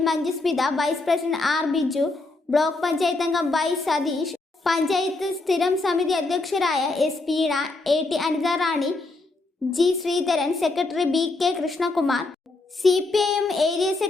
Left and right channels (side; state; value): right; quieter; 3.3 dB